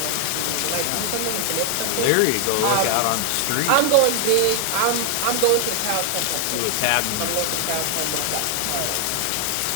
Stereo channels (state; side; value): different; both; correlation 0.00